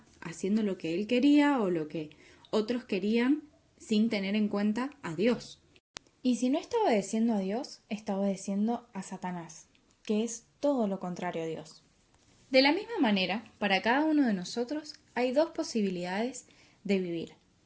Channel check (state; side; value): identical; both; correlation 1.00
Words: haciendo lo que él quería o lo que otros querían sin tener en cuenta a Dios. Y si no está obedeciendo a Dios, está obedeciendo a Satanás, que es todo lo contrario a Dios. De la misma manera, para cada uno de nosotros hay dos posibilidades de vivir: